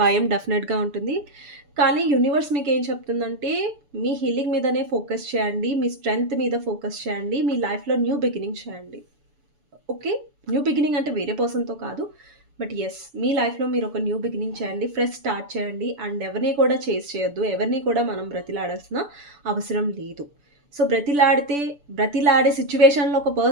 డెఫినెట్‌గా ఉంటుంది. కానీ యూనివర్స్ మీకేం చెప్తుందంటే మీ హీలింగ్ మీదనే ఫోకస్ చేయండి. మీ స్ట్రెంగ్త్ మీద ఫోకస్ చేయండి. మీ లైఫ్‌లో న్యూ బిగినింగ్ చేయండి. ఓకే. న్యూ బిగినింగ్ అంటే వేరే పర్సన్‌తో కాదు. బట్ యెస్, మీ లైఫ్‌లో మీరు ఒక న్యూ బిగినింగ్ చేయండి. ఫ్రెష్ స్టార్ట్ చేయండి. అండ్ ఎవరిని కూడా చేజ్ చేయొద్దు. ఎవరిని కూడా మనం బ్రతిలాడాల్సిన అవసరం లేదు. సో, బ్రతిలాడే సిట్యుయేషన్‌లో ఒక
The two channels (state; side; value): late; left; 6.9 ms